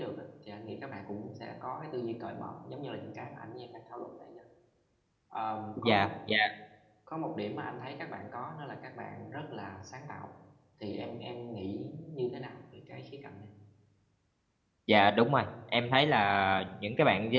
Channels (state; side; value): identical; both; correlation 1.00